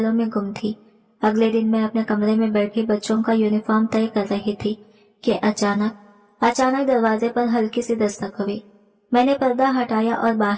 में गुम थी। अगले दिन मैं अपने कमरे में बैठी बच्चों का यूनिफॉर्म तय कर रही थी कि अचानक दरवाजे पर हल्की सी दस्तक हुई। मैंने पर्दा हटाया और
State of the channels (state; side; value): identical; both; correlation 1.00